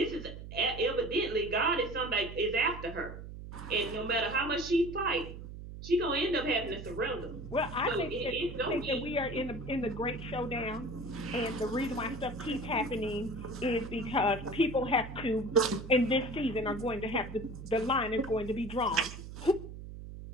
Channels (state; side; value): noise; right; hum, 11 dB below the sound